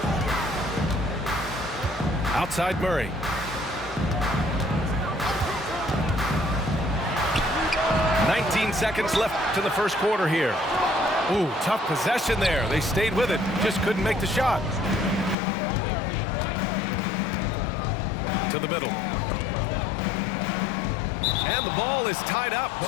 Outside Murray. Seconds left to the first quarter here. Ooh, tough possession there. They stayed with it, just couldn't make the shot. To the middle. And the ball is tied up,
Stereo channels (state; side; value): drops out; right; at 15.4 s